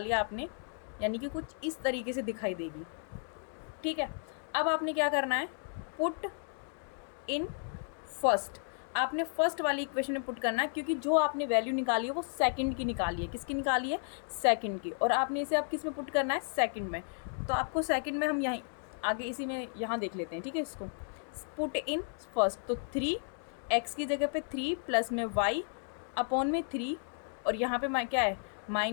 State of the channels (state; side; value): silent; right; 55 dB below the other